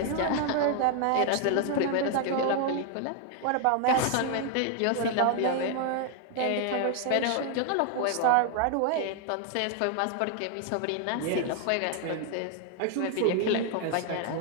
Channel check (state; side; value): different; both; correlation 0.00